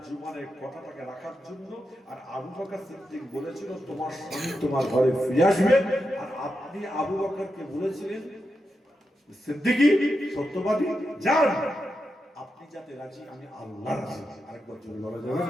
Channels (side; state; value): both; normal; correlation 0.87